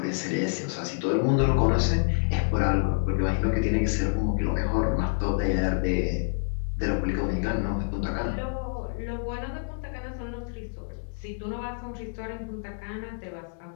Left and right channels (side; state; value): right; silent; digital silence